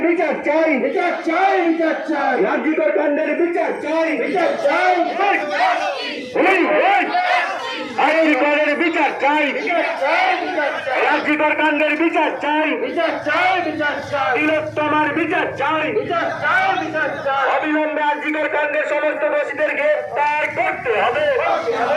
বিচার চাই, আর্জিকর কাণ্ডের বিচার চাই, আর্জিকরের বিচার চাই, আর্জিকর কাণ্ডের বিচার চাই, তিলোত্তমার বিচার চাই, অবিলম্বে আর্জিকর কাণ্ডের সমস্ত দোষীদেরকে গ্রেফতার করতে হবে।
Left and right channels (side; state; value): both; identical; correlation 1.00